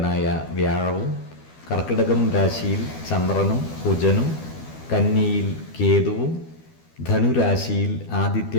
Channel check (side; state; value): right; late; 12 ms